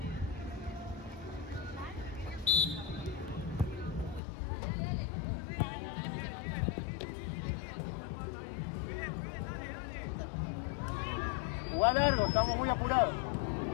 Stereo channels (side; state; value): right; drops out; at 4.2 s